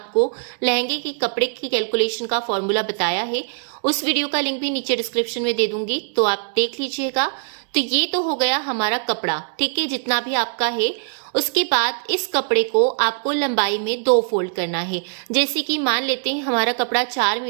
लहंगे के कपड़े की कैलकुलेशन का फॉर्मूला बताया है। उस वीडियो का लिंक भी नीचे डिस्क्रिप्शन में दे दूंगी, तो आप देख लीजिएगा। तो ये तो हो गया हमारा कपड़ा, ठीक है, जितना भी आपका है। उसके बाद इस कपड़े को आपको लंबाई में 2 फोल्ड करना है। जैसे कि मान लेते हैं हमारा कपड़ा 4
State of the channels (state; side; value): silent; left; digital silence